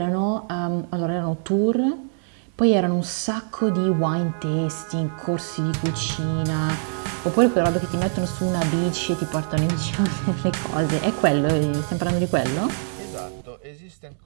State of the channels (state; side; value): silent; left; digital silence